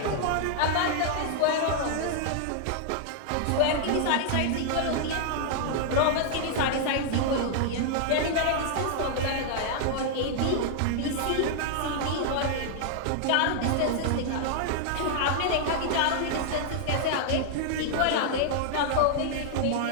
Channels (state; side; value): different; both; correlation -0.01